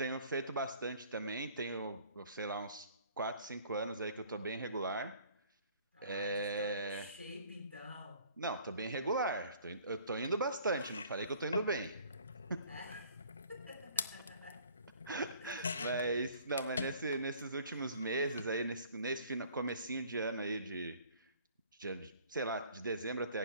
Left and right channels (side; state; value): both; inverted; correlation -0.54